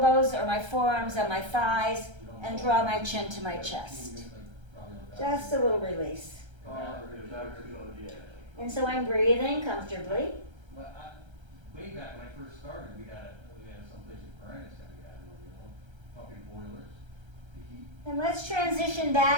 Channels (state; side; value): late; left; 1.3 ms